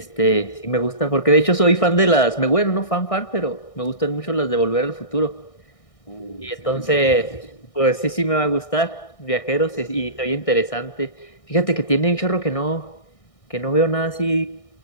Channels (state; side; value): late; right; 1.6 ms